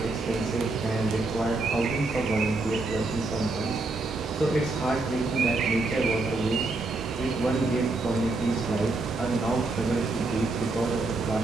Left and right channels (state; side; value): quieter; left; 3.3 dB